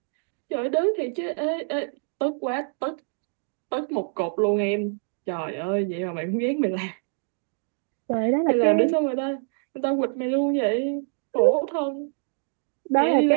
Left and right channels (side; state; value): left; silent; 60 dB below the other